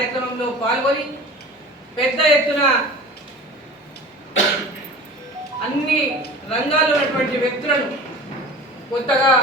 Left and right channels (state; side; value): normal; both; correlation 0.38